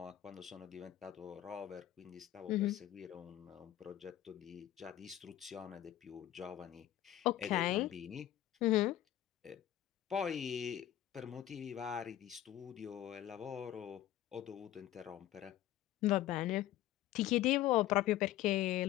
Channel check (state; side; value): quieter; right; 13.2 dB